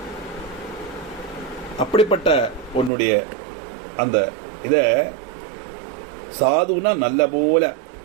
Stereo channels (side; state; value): left; drops out; at 2.9 s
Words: அப்படிப்பட்ட உன்னுடைய அந்த இத சாதுனா நல்ல போல